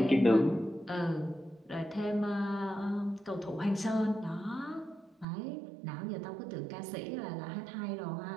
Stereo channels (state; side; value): drops out; left; at 5.2 s